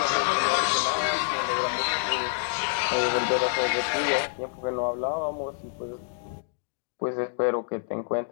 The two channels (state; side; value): silent; right; digital silence